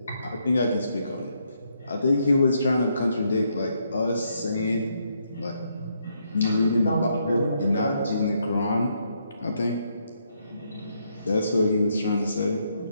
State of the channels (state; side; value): inverted; both; correlation -0.76